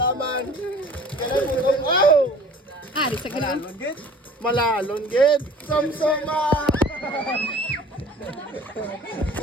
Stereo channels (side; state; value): both; normal; correlation 0.48